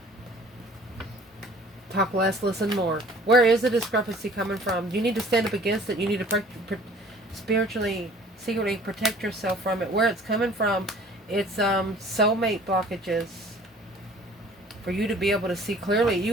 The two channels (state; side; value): normal; both; correlation 0.51